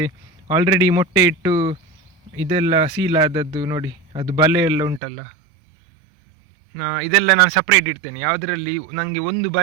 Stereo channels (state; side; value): drops out; left; at 5.0 s